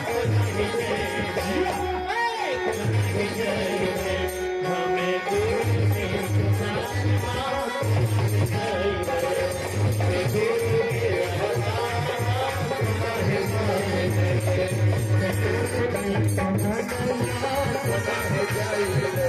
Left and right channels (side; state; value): both; identical; correlation 1.00